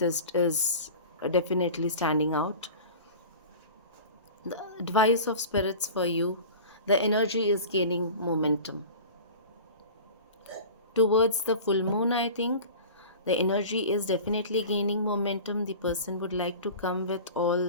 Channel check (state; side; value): inverted; both; correlation -0.36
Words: is definitely standing out. The advice of spirits for you, the energy is gaining momentum towards the full moon. I think the energy is definitely gaining momentum. The person would like to come with